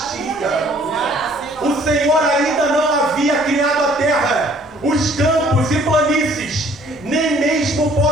O Senhor ainda não havia criado a terra, os campos e planícies, nem mesmo o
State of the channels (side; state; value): both; normal; correlation 0.58